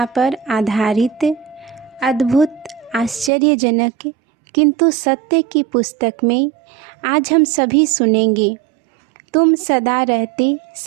पर आधारित अद्भुत आश्चर्यजनक किंतु सत्य की पुस्तक में आज हम सभी सुनेंगे तुम सदा रहते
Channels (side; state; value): left; drops out; at 3.3 s